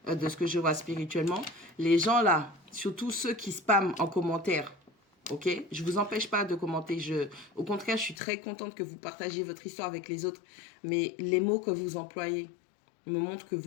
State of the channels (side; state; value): right; drops out; at 8.2 s